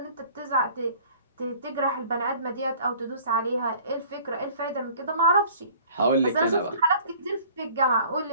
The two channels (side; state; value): both; inverted; correlation -0.51